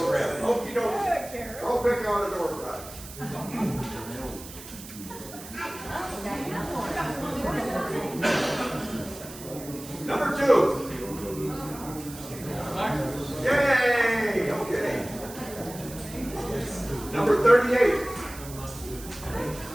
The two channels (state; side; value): noise; right; hiss, 14 dB below the sound